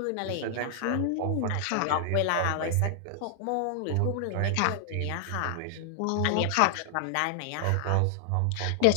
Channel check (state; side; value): different; both; correlation -0.01